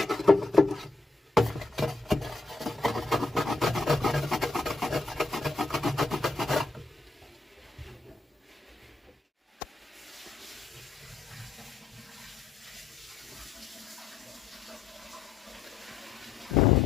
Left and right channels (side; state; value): right; quieter; 3.5 dB